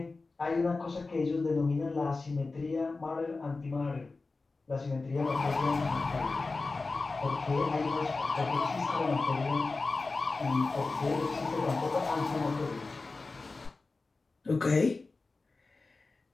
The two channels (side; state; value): right; quieter; 3.7 dB